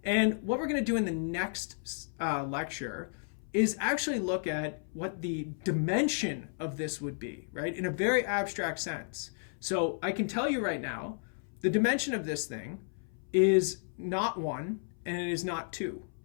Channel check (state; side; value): silent; right; 56 dB below the other